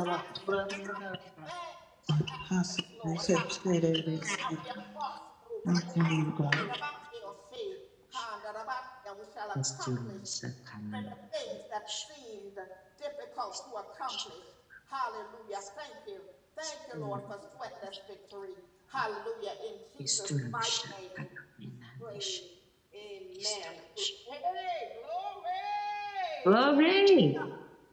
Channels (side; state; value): both; identical; correlation 1.00